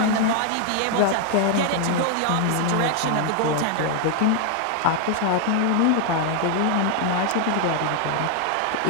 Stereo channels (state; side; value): different; both; correlation 0.00